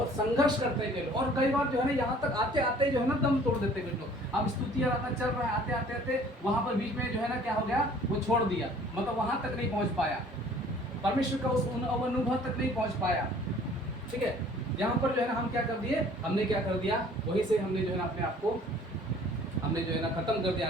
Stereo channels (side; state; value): both; normal; correlation 0.53